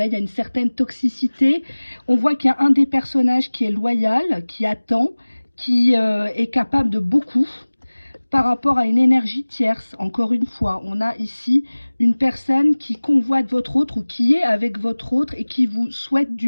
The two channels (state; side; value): inverted; both; correlation -1.00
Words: il y a une certaine toxicité. On voit qu'il y a un des personnages qui est loyal, qui attend, qui est capable de beaucoup par rapport à une énergie tierce. Encore une fois, on a ici une personne qui convoite votre autre ou qui est avec votre autre et qui vous souhaite du